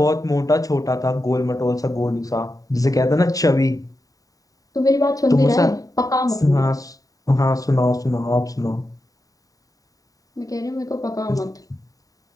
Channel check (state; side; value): late; right; 0.17 ms